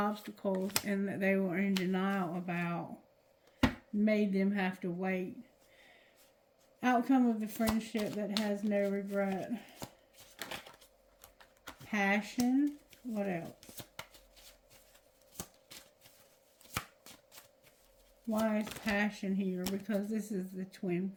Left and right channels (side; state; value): both; identical; correlation 1.00